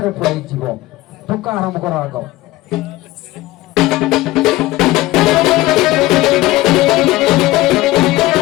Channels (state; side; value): quieter; right; 17.9 dB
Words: ପଳେଇଯିବ। ଟୋକା ଆରମ୍ଭ କର ଆଗ।